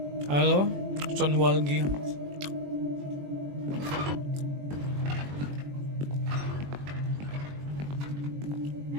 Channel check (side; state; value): left; late; 21 ms